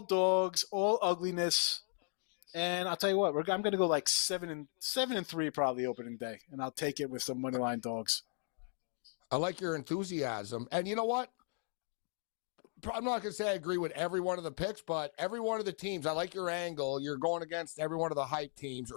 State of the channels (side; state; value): right; silent; 53 dB below the other